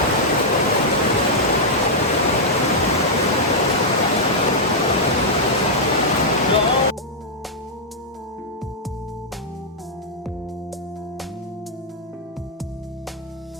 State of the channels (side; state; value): both; normal; correlation -0.06